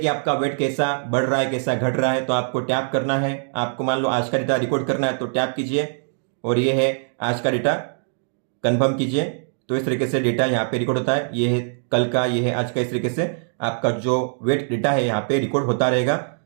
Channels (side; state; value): left; silent; digital silence